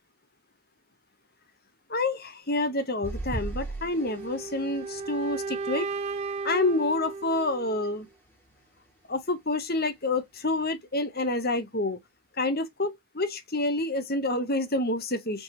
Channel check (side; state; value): both; normal; correlation 0.04